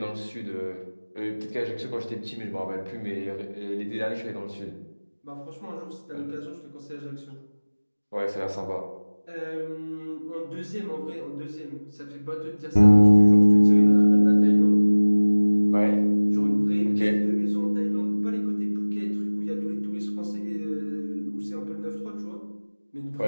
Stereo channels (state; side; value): inverted; both; correlation -1.00